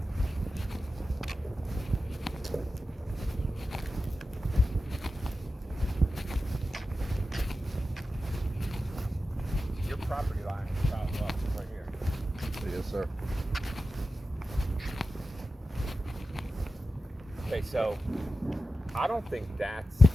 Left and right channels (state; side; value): normal; both; correlation 0.92